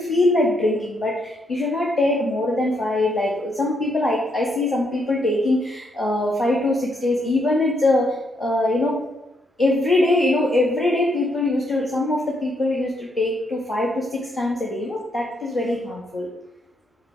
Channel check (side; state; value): both; normal; correlation 0.76